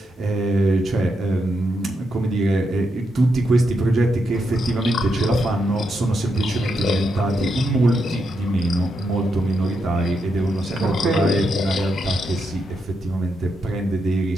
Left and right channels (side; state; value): both; normal; correlation 0.82